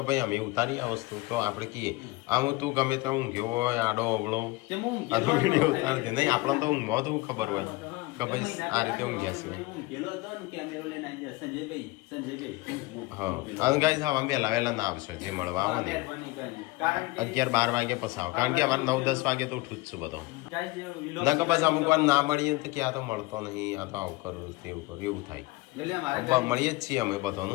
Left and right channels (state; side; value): quieter; right; 22.1 dB